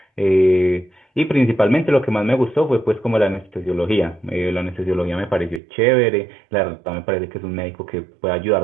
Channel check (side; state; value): left; drops out; at 5.6 s